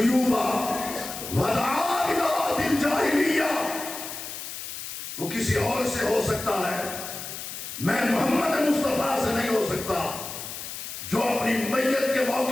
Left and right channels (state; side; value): noise; left; hiss, 9 dB below the sound